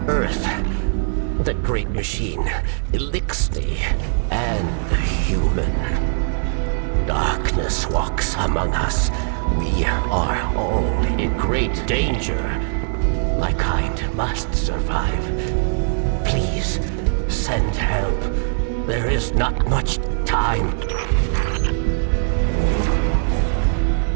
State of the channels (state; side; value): silent; left; 64 dB below the other